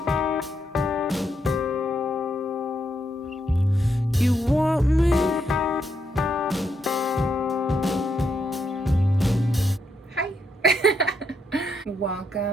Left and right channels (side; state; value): both; normal; correlation 0.78